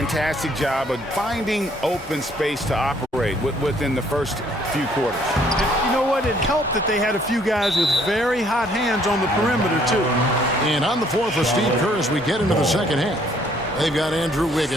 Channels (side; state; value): both; normal; correlation 0.63